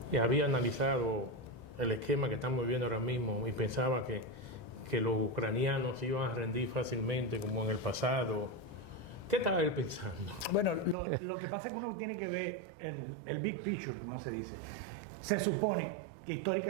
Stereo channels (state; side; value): drops out; left; at 11.0 s